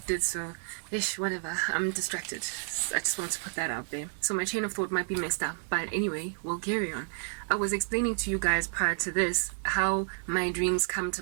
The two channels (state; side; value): silent; left; 56 dB below the other